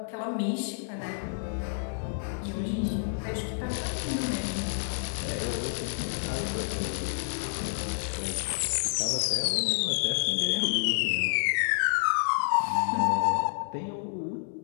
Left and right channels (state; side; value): silent; right; digital silence